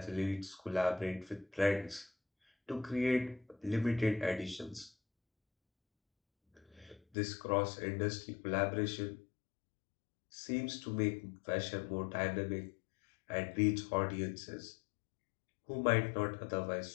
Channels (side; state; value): right; drops out; at 7.0 s